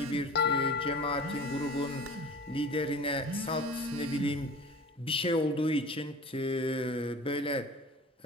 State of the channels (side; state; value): both; normal; correlation 0.40